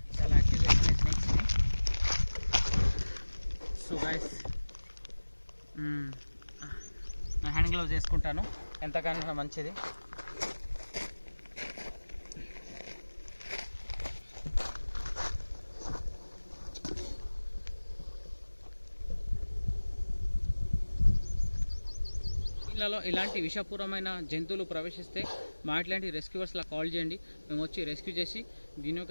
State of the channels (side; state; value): both; inverted; correlation -1.00